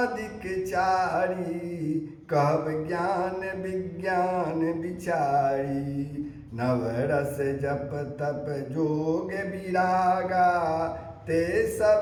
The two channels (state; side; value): identical; both; correlation 1.00